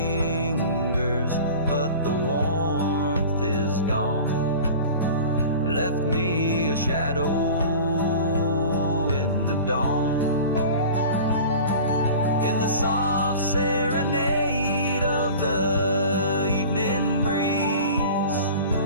but the warmth is gone. Left me a shadow in the dawn. In the soft serenade of the evening breeze,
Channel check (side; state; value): both; inverted; correlation -0.39